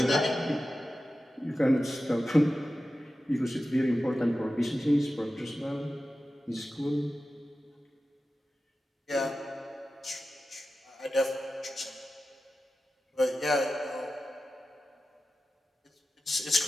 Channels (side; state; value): both; normal; correlation 0.93